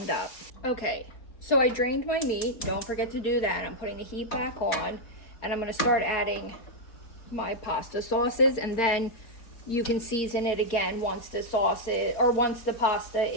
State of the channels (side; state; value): right; late; 4.3 ms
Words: up. Okay, so I drained my meat. Don't forget to do that. I'm putting the heat back on, and I'm going to start adding my pasta sauces, and then you can season it again once the sauce is, or once the pasta